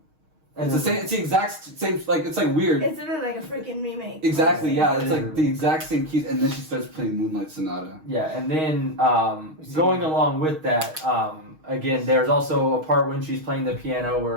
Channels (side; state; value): left; late; 6.4 ms